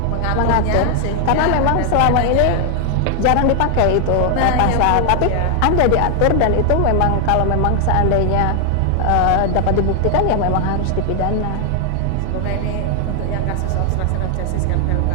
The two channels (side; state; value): both; different; correlation 0.00